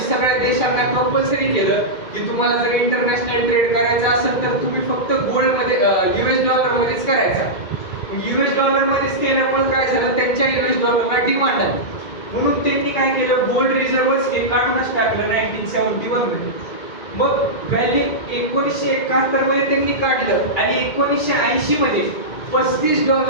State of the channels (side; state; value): right; late; 2.2 ms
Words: सगळ्या देशांना कंपल्सरी केलं की तुम्हाला जर इंटरनॅशनल ट्रेड करायचं असेल तर तुम्ही फक्त गोल्ड मध्ये US डॉलर मध्येच करायचा. US डॉलर मध्येच केल्यामुळे काय झालं त्यांच्या US डॉलरला डिमांड आहे, म्हणून त्यांनी काय केलं गोल्ड रिझर्व्हच हे काढूनच टाकलं 1971 मध्ये. मग व्हॅल्यू 1971 मध्ये त्यांनी काढलं आणि 1980 मध्ये